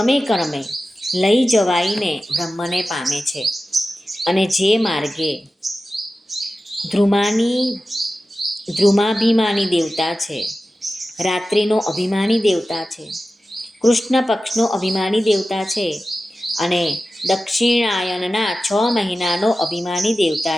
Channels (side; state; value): both; normal; correlation 0.94